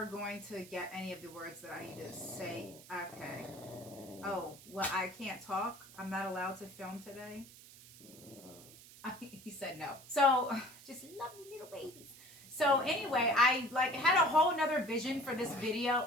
going to get any of the words that I need to say. Okay. Oh, well, I can't talk. I'm not allowed to film today. He said no. So just love me little babies. So anyway, I like had a whole nother vision for this video.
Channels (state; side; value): noise; right; hiss, 19 dB below the sound